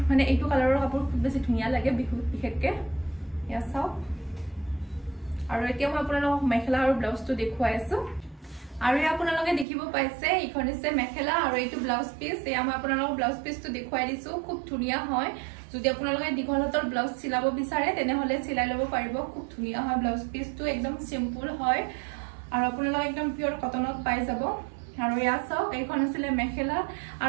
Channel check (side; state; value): left; drops out; at 9.7 s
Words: মানে এইটো কালাৰৰ কাপোৰ খুব বেছি ধুনীয়া লাগে বিহুত বিশেষকৈ এয়া চাওক আৰু এতিয়া মই আপোনালোকক মেখেলা আৰু ব্লাউজটো দেখুৱাই আছো আৰু ইয়া আপোনালোকে দেখিব পাইছে এইখন হৈছে মেখেলা আৰু এইটো ব্লাউজ পিস এয়া মই আপোনালোকক ব্লাউজ পিসটো দেখুৱাই দিছো খুব ধুনীয়া হয় যদি আপোনালোকে দীঘল হাতৰ ব্লাউজ চিলাব বিচাৰে তেনেহলে চিলাই ল'ব পাৰিব খুব ধুনীয়া হয় ব্লাউজ পিসটো একদম সিম্পল হয় আৰু আপোনালোকে একদম পিওৰ কটনত পাই যাব আৰু ইয়া চাওক এইখন আছিল মেখেলা